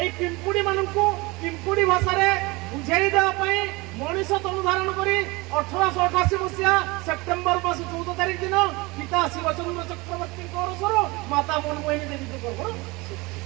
এই ପିମ୍ପୁଡ଼ି ମାନଙ୍କୁ ପିମ୍ପୁଡ଼ି ଭାଷାରେ ବୁଝେଇ ଦେବା ପାଇଁ ମଣିଷ ତନୁ ଧାରଣ କରି 1888 ମସିହା ସେପ୍ଟେମ୍ବର ମାସ 14 ତାରିଖ ଦିନ ପିତା ଶିବଚନ୍ଦ୍ର ଚକ୍ରବର୍ତ୍ତୀଙ୍କ ଅରସରୁ ମାତା ମନମୋହିନୀ ଦେବୀଙ୍କ ଗର୍ଭ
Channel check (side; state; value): left; quieter; 24.1 dB